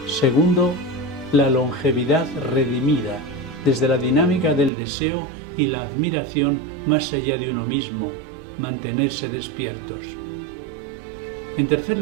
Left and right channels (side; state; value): left; drops out; at 4.7 s